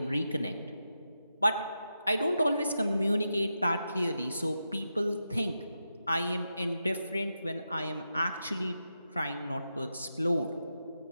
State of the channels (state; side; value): inverted; both; correlation -0.88